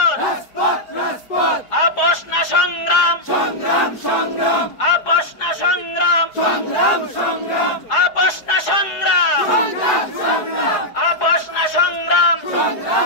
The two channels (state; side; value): late; right; 4.8 ms